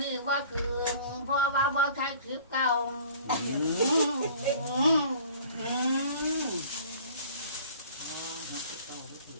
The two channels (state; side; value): inverted; both; correlation -0.48